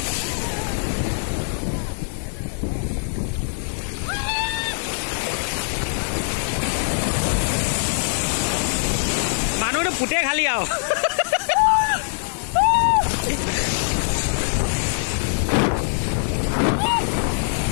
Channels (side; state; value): right; silent; 64 dB below the other